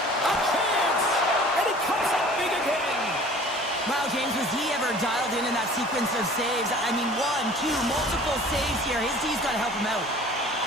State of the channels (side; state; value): both; normal; correlation 0.47